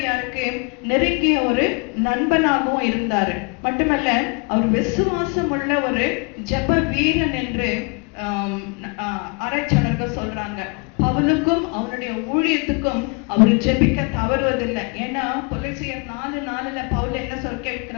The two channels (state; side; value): quieter; right; 31.9 dB